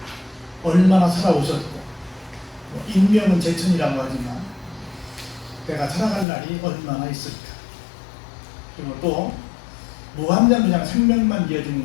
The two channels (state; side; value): drops out; right; at 6.2 s